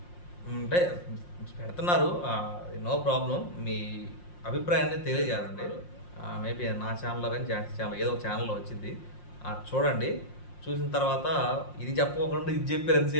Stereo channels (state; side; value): late; right; 5.6 ms